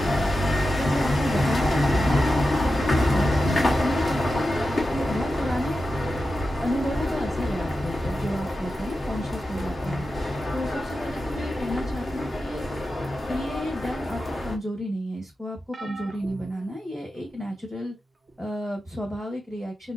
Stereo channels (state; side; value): normal; both; correlation 0.91